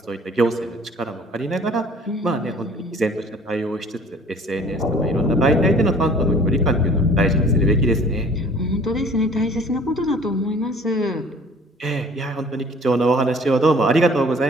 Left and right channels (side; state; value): both; normal; correlation 0.51